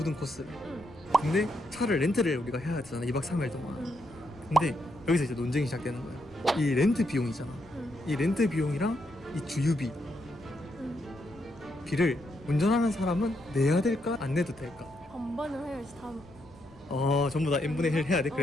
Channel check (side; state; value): left; noise; rumble, 25 dB below the sound